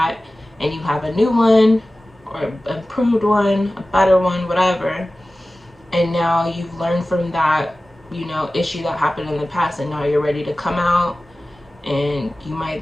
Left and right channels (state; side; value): normal; both; correlation 0.96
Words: and you have a new one, or improved one, a better one, whatever. And now you've learned from that, you know, issue that happened in the past, and now you're ready to come out, and you